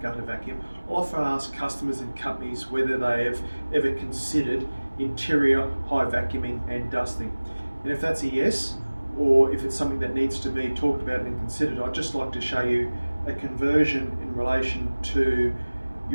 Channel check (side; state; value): both; inverted; correlation -1.00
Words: gutter vacuum, I often ask customers and companies whether they have ever considered interior high vacuuming and dusting. And if that's a yes, or if it's something that needs to be talked about and considered, I'd just like to show you a conversion in relation to